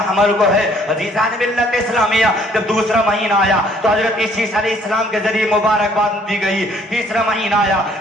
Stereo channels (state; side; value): normal; both; correlation 0.62